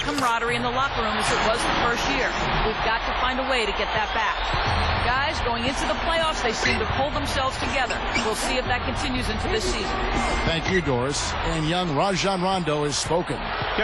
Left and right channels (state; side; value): identical; both; correlation 1.00